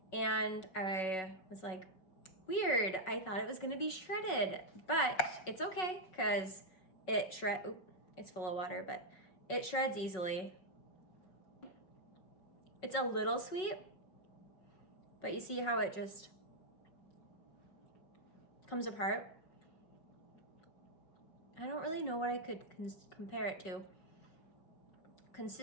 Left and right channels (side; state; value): right; late; 5.4 ms